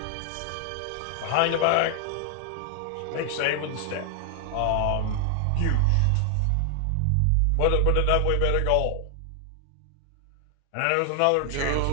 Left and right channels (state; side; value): different; both; correlation 0.00